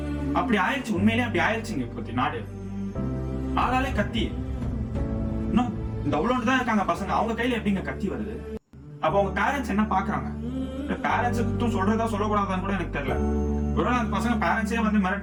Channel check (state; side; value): identical; both; correlation 1.00